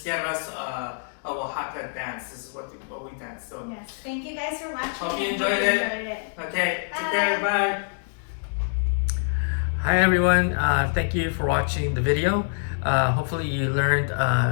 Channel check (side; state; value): right; silent; digital silence